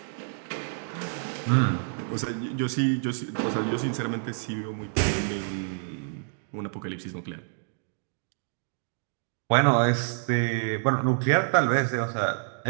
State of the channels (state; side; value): silent; left; 59 dB below the other